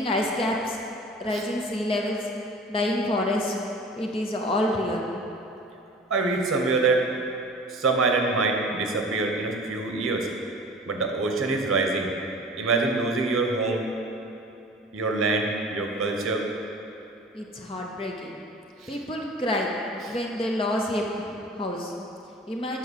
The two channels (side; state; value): both; normal; correlation 0.42